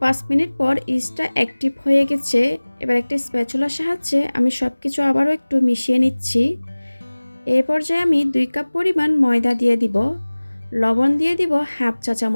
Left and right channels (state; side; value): inverted; both; correlation -1.00